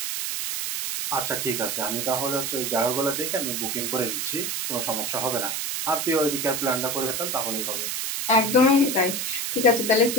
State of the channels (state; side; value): noise; right; hiss, 2 dB below the sound